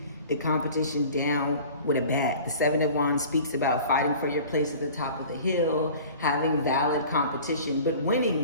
the competition down with a bat. The Seven of Wands speaks about fighting for your place at the top of the hill, having valid competition, but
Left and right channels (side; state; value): both; inverted; correlation -0.43